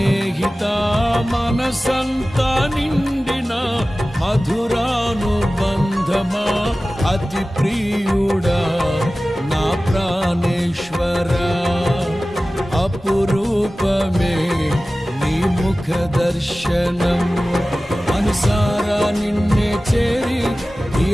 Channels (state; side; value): normal; both; correlation 0.96